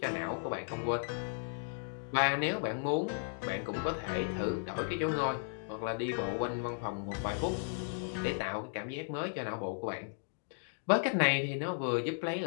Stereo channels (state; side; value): silent; right; digital silence